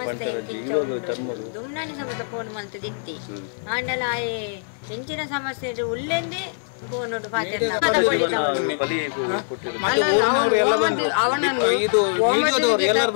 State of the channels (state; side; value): silent; right; 61 dB below the other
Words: ಪಂತರ ಇವಾಗ ಟರ್ಮರು ದುಮ್ನಾನಿ ಸಮೇತ ಫೋನ್ ಮಾಡ್ತಿದ್ದಿ ಆಂಡಲ ಆಯೆ ಹೆಂಚಿನ ಸಮಸ್ಯೆ ಉಲ್ಲೆಂದೇ ಫೋನ್ ನೋಟ್ ಪಾತರ ಬಲಿ ಮತ್ತೆ ಊರಿನವರು ಎಲ್ಲ ಬಂದ್ರು ಇದು ವಿಡಿಯೋದವರು ಎಲ್ಲರೂ